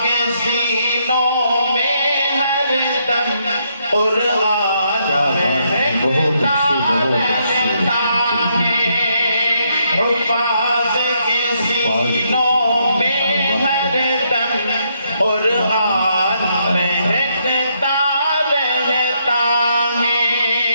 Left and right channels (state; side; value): inverted; both; correlation -0.75